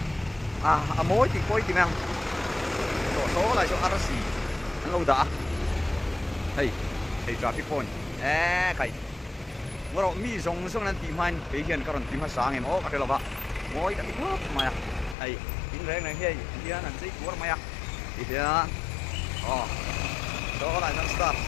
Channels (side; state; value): right; drops out; at 15.2 s